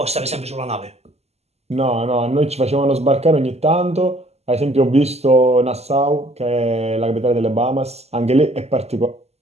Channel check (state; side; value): late; left; 0.30 ms